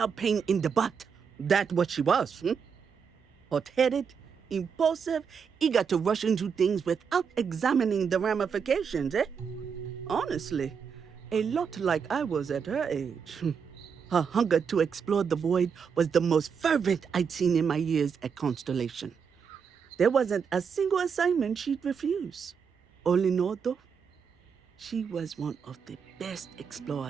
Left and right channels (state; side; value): quieter; left; 6.5 dB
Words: pain in the butt. That's what she was. Hot-headed, impulsive, eager to rush into things without examining the ramifications, Honestly, a lot like I was at her age. Her hunger to explore the void was the most fervent I'd seen in my years at Constellation. There wasn't a single assignment she'd refuse. All in all, though, she was one of the best